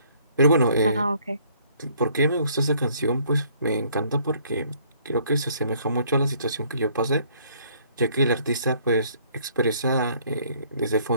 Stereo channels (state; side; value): inverted; both; correlation -0.62